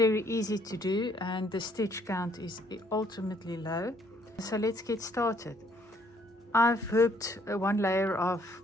easy to do and the stitch count is ultimately low. So let's get started. I've hooped one layer of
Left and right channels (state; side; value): normal; both; correlation 0.65